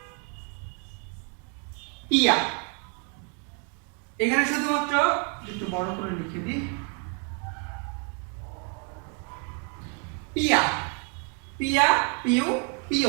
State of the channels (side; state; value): left; quieter; 39.3 dB